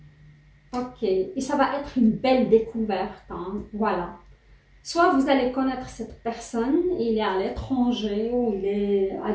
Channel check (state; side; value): identical; both; correlation 1.00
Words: Ok. Et ça va être une belle découverte. Hein. Voilà. Soit vous allez connaître cette personne, il est à l'étranger ou il est à